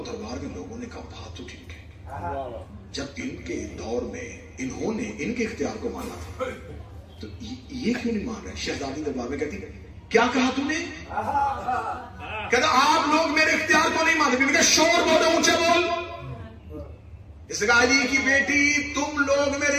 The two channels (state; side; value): identical; both; correlation 1.00